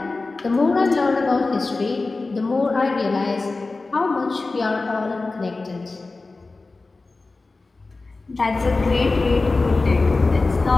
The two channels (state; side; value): quieter; right; 3.5 dB